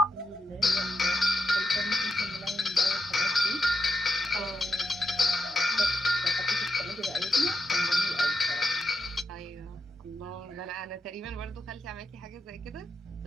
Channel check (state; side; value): normal; both; correlation 0.83